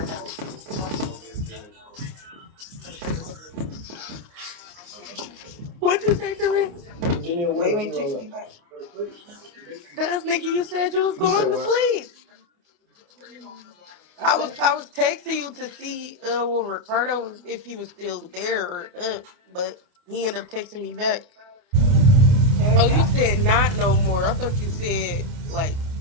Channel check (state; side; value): late; left; 28 ms